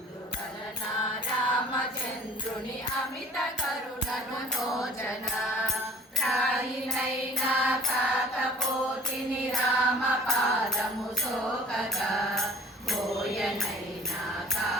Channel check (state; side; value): normal; both; correlation 0.51